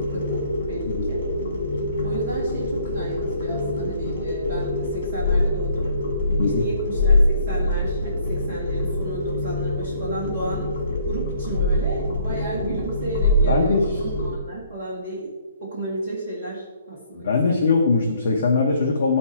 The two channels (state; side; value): inverted; both; correlation -0.62